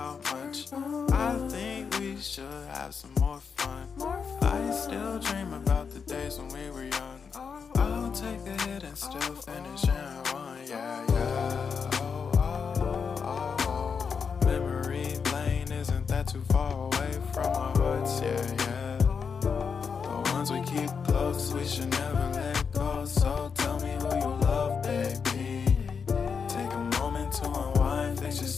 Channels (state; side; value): quieter; right; 6.0 dB